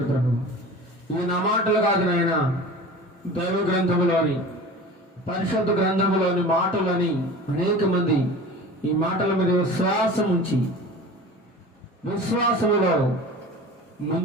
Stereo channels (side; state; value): both; normal; correlation 0.37